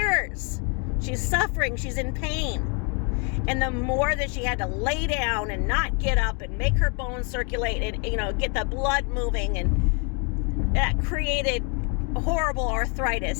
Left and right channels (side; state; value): right; quieter; 34.8 dB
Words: She's suffering. She's in pain. And the more that she had to lay down and not get up and make her bones circulate and, get the blood moving, and that created horrible